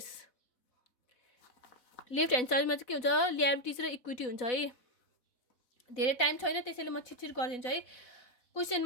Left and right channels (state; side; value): late; right; 4.0 ms